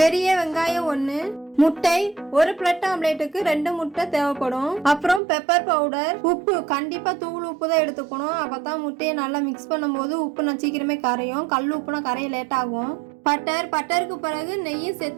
வெங்காயம் 1, முட்டை, ஒரு பிரெட் ஆம்லேட்டுக்கு 2 முட்டை தேவைப்படும். அப்புறம் பெப்பர் பவுடர், உப்பு, கண்டிப்பா தூள் உப்பு தான் எடுத்துக்கணும். அப்பதான் முட்டையை நல்லா மிக்ஸ் பண்ணும்போது உப்பு நான் சீக்கிரமே கரையும். கல் உப்புனா கரைய லேட் ஆகும். பட்டருக்கு பிறகு நெய்யும்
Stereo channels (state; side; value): drops out; left; at 5.2 s